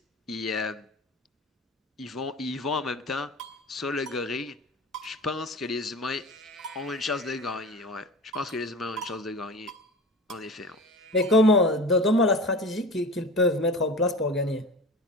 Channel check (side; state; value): both; normal; correlation 0.34